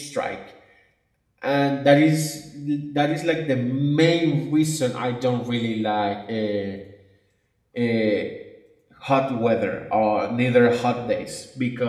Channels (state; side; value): identical; both; correlation 1.00